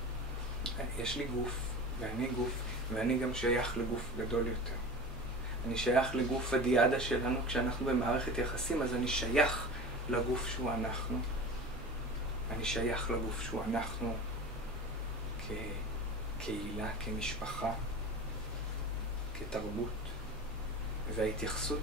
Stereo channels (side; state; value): both; normal; correlation 0.34